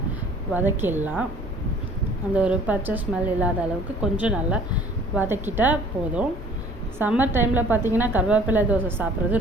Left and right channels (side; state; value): both; normal; correlation 0.53